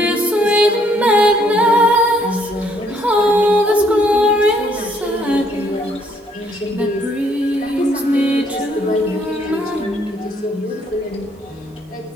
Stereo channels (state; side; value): normal; both; correlation 0.67